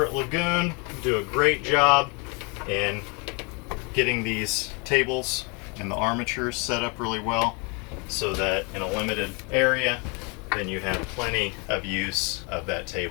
at Lagoon do a great job in getting these tables and the armatures set up really well so that in a limited area then you have plenty of use of that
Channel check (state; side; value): quieter; right; 32.4 dB